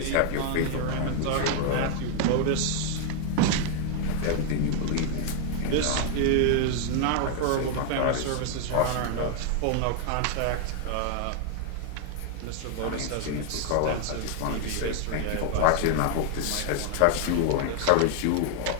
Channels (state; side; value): different; both; correlation 0.00